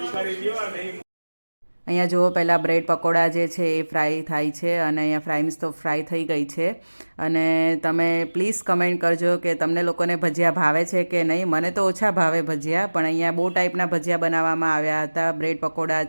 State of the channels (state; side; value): inverted; both; correlation -1.00